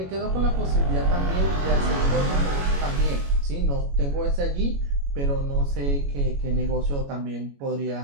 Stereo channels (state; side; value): late; left; 21 ms